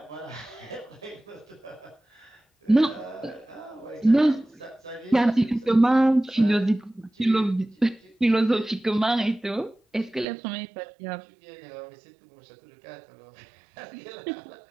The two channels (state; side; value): drops out; left; at 10.2 s